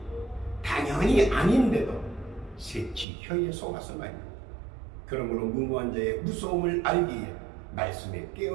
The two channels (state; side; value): drops out; left; at 3.1 s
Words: 당연히 아닌데도 새치 혀에 속아서 말입니다. 그러므로 무모한 자의 무서움을 알기에 말씀에